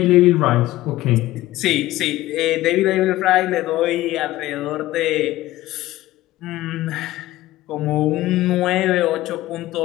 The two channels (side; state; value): right; quieter; 16.4 dB